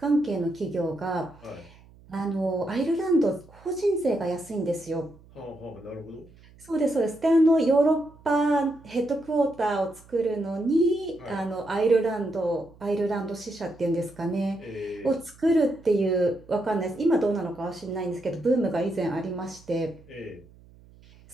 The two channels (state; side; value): noise; right; hum, 25 dB below the sound